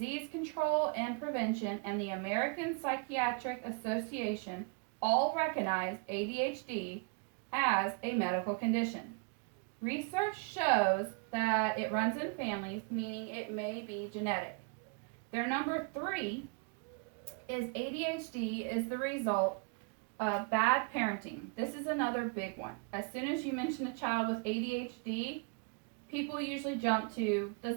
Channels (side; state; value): left; quieter; 32.7 dB